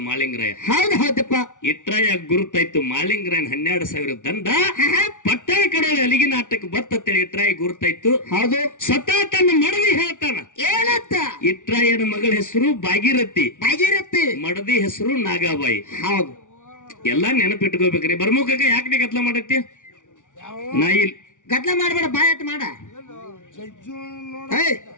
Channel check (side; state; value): right; late; 0.87 ms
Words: ಮಾಳಿಂಗರಾಯ. ಹೌದು ಹೌದಪ್ಪ. ಇಟ್ರಾಯ ಗುರುತಾಯ್ತು ಮಾಳಿಂಗರಾಯನ್ 12,000 ದಂಡ ಪಟ್ಟಣ ಕಡೋಳಿ ಅಲಿಗಿ ನಾಟಕ ಬತ್ತೇಳಿ ಇಟ್ರಾಯ ಗುರುತಾಯ್ತು. ಹೌದು ಸ್ವತಃ ತನ್ನ ಮಡದಿ ಹೇಳ್ತಾನ. ಏನಂತ? ಇಟ್ರಾಯನ ಮಗಳ ಹೆಸರು ಭಾಗೀರಥಿ, ಭಾಗೀರಥಿ. ಮಡದಿ ಹೆಸರು ನಾಗಾಬಾಯಿ. ಹೌದು ಎಲ್ಲಾ ನೆನಪಿಟ್ಕೋಬೇಕ್ರಿ. ಬರ್ಮುಖಕ್ಕ ಯಾಕೆ ನೀ ಗದ್ಲ ಮಾಡತ್ತಿ? ನಾ ಇಲ್ಲಿ ಗದ್ಲ ಮಾಡ್ಬೇಡ, ಬಾಯಟ್ ಮಾಡ. ಏಯ್